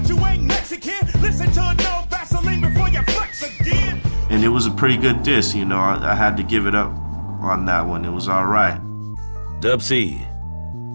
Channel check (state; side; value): inverted; both; correlation -1.00